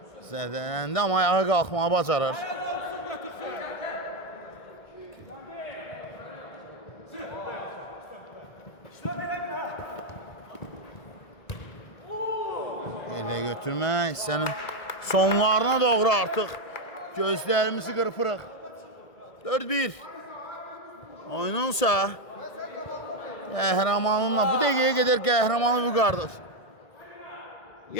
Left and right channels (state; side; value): late; right; 1.5 ms